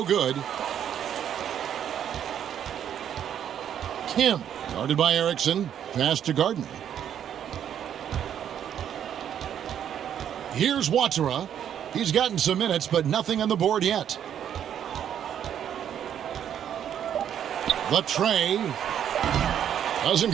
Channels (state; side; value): quieter; left; 9.5 dB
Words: good. Kim, guarded by Erickson. Pass to Gardner. Here's Watera. He's gotten some minutes, but nothing on the board yet. The tray doesn't